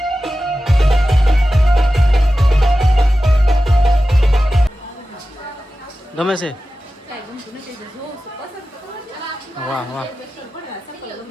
ગમે છે? કાંઈ ગમતું નથી તો જોઉં છું પસંદ તો કરો છો. વાહ વાહ.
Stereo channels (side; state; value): both; normal; correlation 0.94